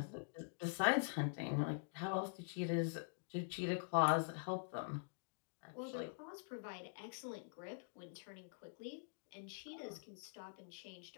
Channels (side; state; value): right; silent; digital silence